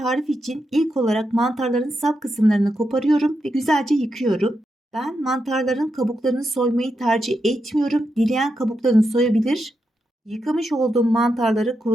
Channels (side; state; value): both; normal; correlation 0.85